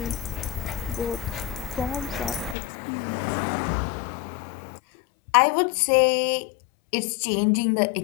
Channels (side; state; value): right; drops out; at 2.6 s